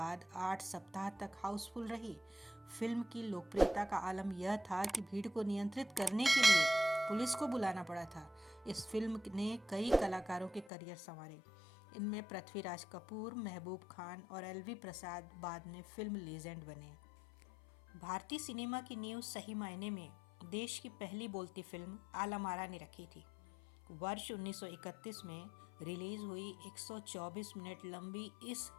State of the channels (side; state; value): right; drops out; at 10.7 s